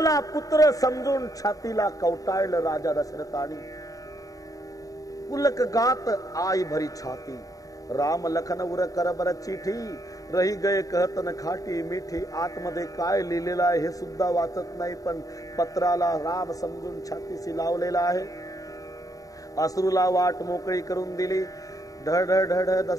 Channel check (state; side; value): late; right; 0.17 ms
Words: पुत्र समजून छातीला कवटाळलं राजा दशरथानी। पुलक गात आई भरी छाती। राम लखन उर करबर चिठी, रही गए कहत न खाटी मिठी। आतमध्ये काय लिहिलेलं आहे हे सुद्धा वाचत नाही, पण पत्राला राम समजून छातीशी लावलेला आहे। अश्रूला वाट मोकळी करून दिली। ढळ ढळ ढळ ढळ